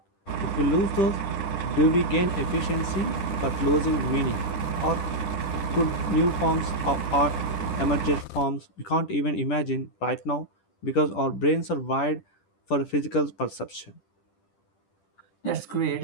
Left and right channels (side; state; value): right; late; 10 ms